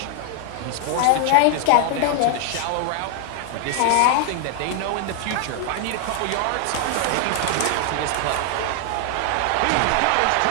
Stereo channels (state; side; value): different; both; correlation 0.00